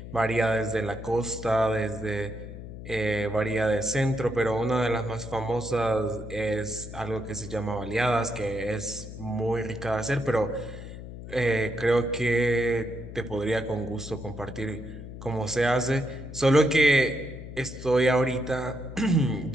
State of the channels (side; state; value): left; noise; hum, 11 dB below the sound